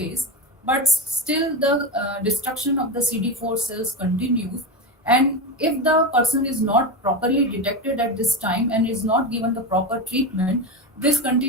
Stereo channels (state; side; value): normal; both; correlation 0.18